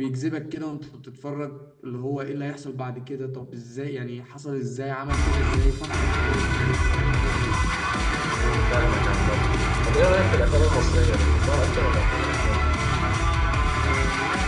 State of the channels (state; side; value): identical; both; correlation 1.00